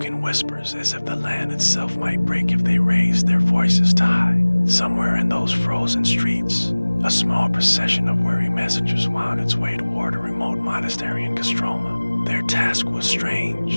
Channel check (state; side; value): inverted; both; correlation -1.00